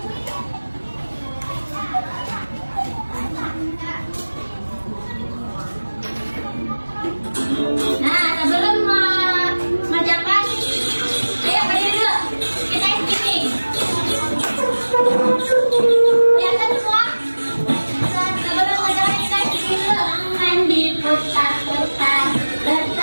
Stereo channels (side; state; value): both; inverted; correlation -1.00